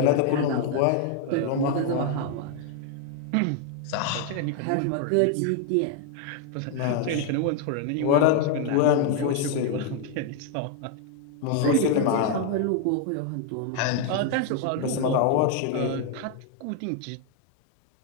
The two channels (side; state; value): both; different; correlation 0.00